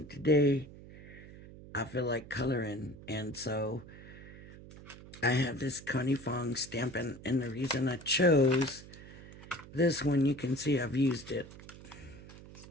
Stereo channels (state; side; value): noise; right; hum, 17 dB below the sound